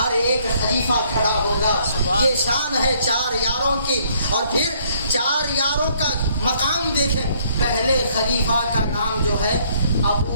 ایک خلیفہ کھڑا ہوگا. یہ شان ہے 4 یاروں کی. اور پھر 4 یاروں کا مقام دیکھیں. پہلے خلیفہ کا نام جو ہے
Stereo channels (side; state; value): both; inverted; correlation -0.65